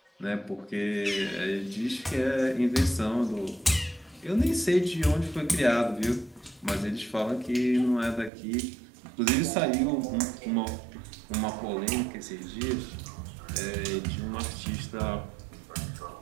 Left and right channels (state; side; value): drops out; left; at 8.3 s